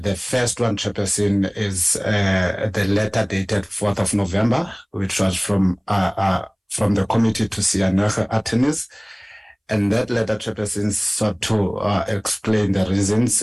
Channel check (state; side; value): identical; both; correlation 1.00